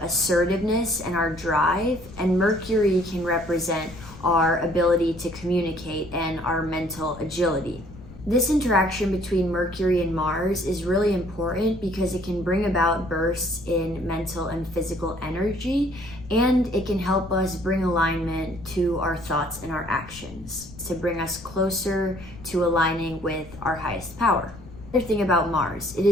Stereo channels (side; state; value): left; noise; rumble, 17 dB below the sound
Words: assertiveness and our drive, and Mercury can represent our ability to communicate and our mental agility. This interaction between Mercury and Mars is really important because it can bring about bursts in mental and physical energy, and it can help us bring alignment to our thoughts and our actions to bring us closer to aligning with our highest power. Another thing about Mars, it